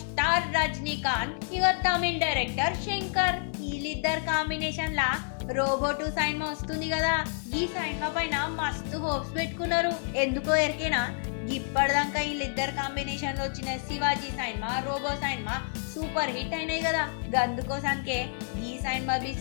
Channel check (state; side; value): silent; right; 59 dB below the other